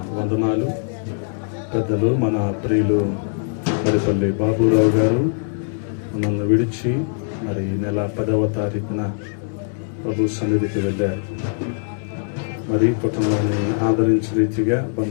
వందనాలు. పెద్దలు మన ప్రియులు మరిపల్లి బాబురావు గారు మనల్ని విడిచి మరి నెల 10వ తారీఖున ప్రభు సన్నిధికి వెళ్ళారు. మరి కుటుంబాన్ని ఆదరించే రీతిగా,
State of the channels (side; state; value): right; silent; digital silence